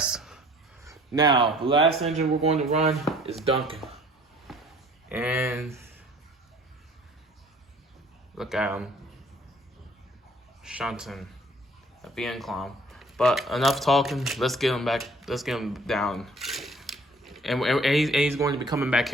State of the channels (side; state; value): both; normal; correlation 0.54